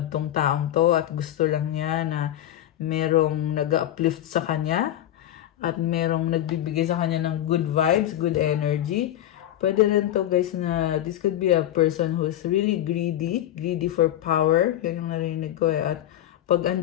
tong taong to at gusto lang niya na merong nag-uplift sa kanya at merong nagbibigay sa kanya ng good vibes, good energy. Pwede rin to guys na this could be a person who's really greedy for power. Yan yung narinig ko eh. At pag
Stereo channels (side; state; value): right; quieter; 12.3 dB